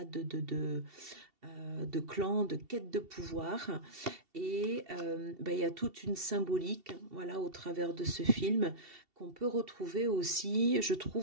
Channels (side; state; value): left; late; 2.7 ms